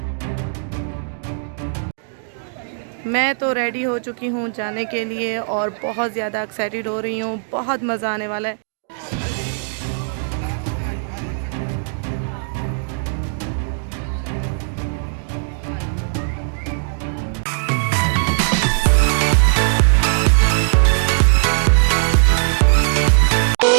मैं तो रेडी हो चुकी हूँ जाने के लिए और बहुत ज़्यादा एक्साइटेड हो रही हूँ, बहुत मज़ा आने वाला है।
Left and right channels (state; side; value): silent; left; digital silence